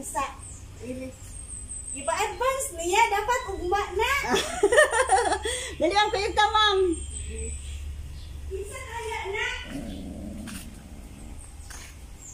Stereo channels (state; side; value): identical; both; correlation 1.00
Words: Ipa-advance niya, dapat ugma na. Dali lang kayo ta, ma'am. Isa kaya na.